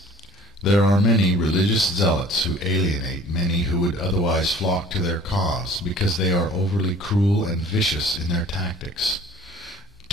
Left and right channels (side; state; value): both; normal; correlation 0.49